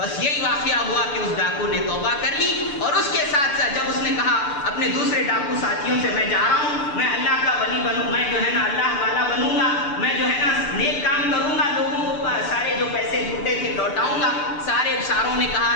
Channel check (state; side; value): late; right; 6.8 ms